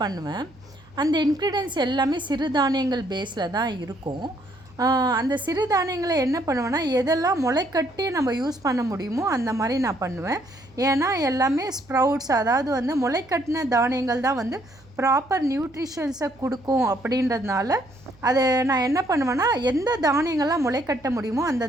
அந்த இன்க்ரீடியன்ஸ் எல்லாமே சிறுதானியங்கள் பேஸில் தான் இருக்கும். அந்த சிறுதானியங்களை என்ன பண்ணுவேன்னா, எதெல்லாம் முளைக்கட்டி நம்ம யூஸ் பண்ண முடியுமோ அந்த மாதிரி நான் பண்ணுவேன். ஏன்னா எல்லாமே ஸ்ப்ரவுட்ஸ், அதாவது வந்து முளைக்கட்டின தானியங்கள் தான் வந்து ப்ராப்பர் நியூட்ரிஷன்ஸை கொடுக்கும். அப்படின்றதுனால அதை நான் என்ன பண்ணுவேன்னா, எந்த தானியங்கள்லாம் முளைக்கட்ட முடியுமோ அந்த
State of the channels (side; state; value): right; noise; hum, 27 dB below the sound